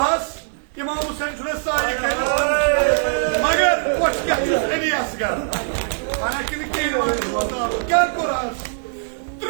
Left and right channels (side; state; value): left; silent; 65 dB below the other